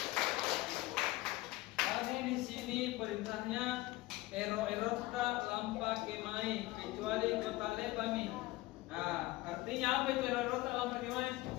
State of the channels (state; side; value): quieter; right; 19.1 dB